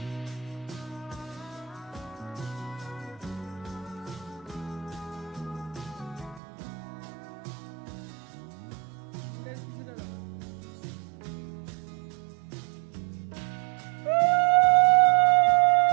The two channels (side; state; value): left; drops out; at 6.4 s